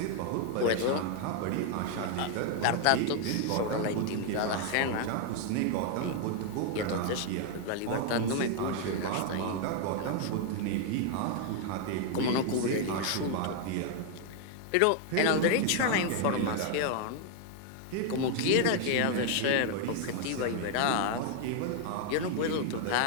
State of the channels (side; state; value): both; different; correlation 0.00